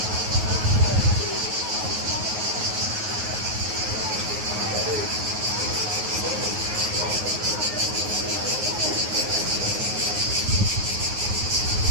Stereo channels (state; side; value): late; left; 9.4 ms